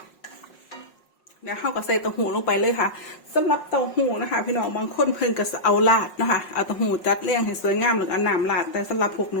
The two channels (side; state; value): right; late; 5.4 ms